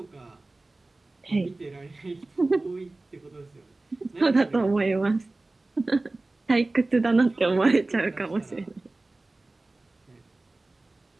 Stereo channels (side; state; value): left; quieter; 3.1 dB